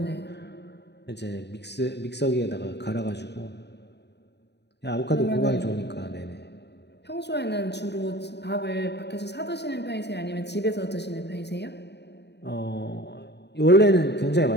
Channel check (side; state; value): right; late; 0.50 ms